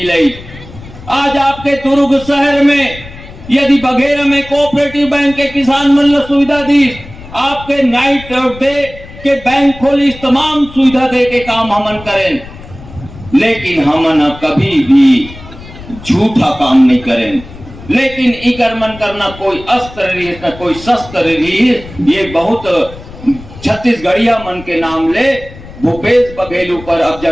लाई। आज आपके दुर्ग शहर में यदि बघेरा में कोऑपरेटिव बैंक के किसान मन ला सुविधा दी, आपके नाइट और डे के बैंक खोली, तमाम सुविधा दे के काम हमन करें, लेकिन हमन कभी भी झूठा काम नहीं करें। लेकिन इकर मन करना कोई अस्त्र रही न कोई शस्त्र रही, ये बहुत छत्तीसगढ़िया मन के नाम ले भूपेश बघेल पर अब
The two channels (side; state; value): left; noise; rumble, 17 dB below the sound